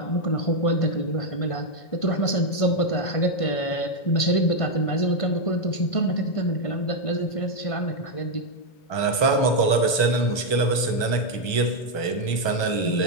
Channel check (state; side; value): late; right; 1.2 ms